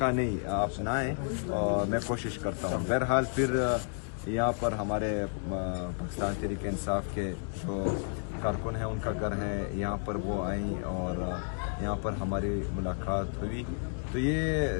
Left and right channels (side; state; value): right; silent; 57 dB below the other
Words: نہیں، آپ نہ آئیں، اور میں کوشش کرتا ہوں۔ بہرحال پھر یہاں پر ہمارے پاکستان تحریک انصاف کے جو کارکن ہیں ان کا گھر ہے، یہاں پر وہ آئیں اور یہاں پر ہماری ملاقات ہوئی۔ تو